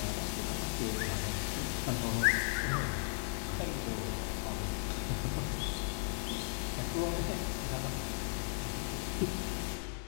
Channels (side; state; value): right; silent; digital silence